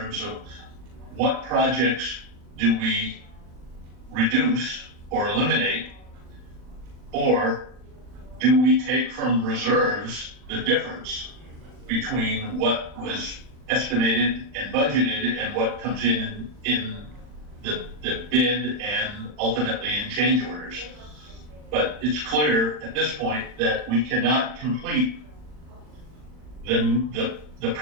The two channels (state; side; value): late; left; 40 ms